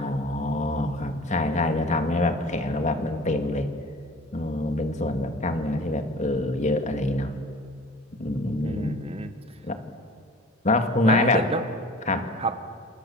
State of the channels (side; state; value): both; normal; correlation 0.44